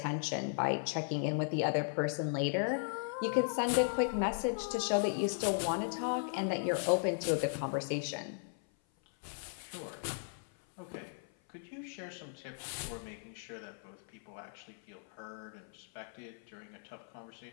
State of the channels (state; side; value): silent; right; 53 dB below the other